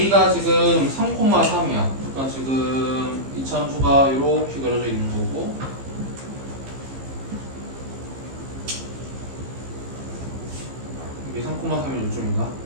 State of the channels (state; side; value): late; left; 15 ms